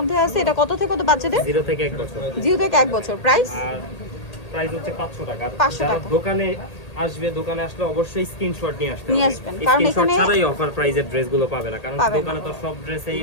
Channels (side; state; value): right; late; 1.8 ms